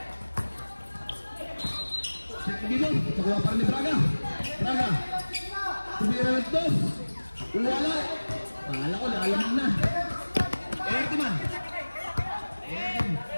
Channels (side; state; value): both; inverted; correlation -1.00